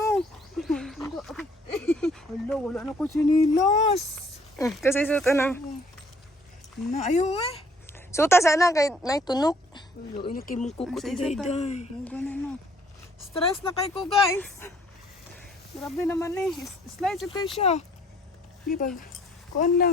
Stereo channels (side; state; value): both; normal; correlation 0.60